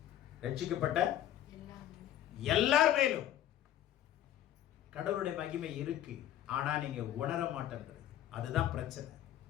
ரட்சிக்கப்பட்ட எல்லார் மேலும் கடவுளுடைய மகிமை இருக்கு. ஆனா நீங்க உணர மாட்டேன்றது, அதுதான் பிரச்சனை.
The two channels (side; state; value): right; quieter; 11.9 dB